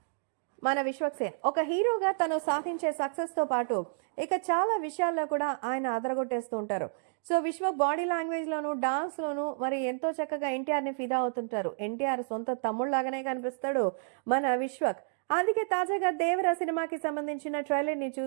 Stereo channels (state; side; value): silent; left; digital silence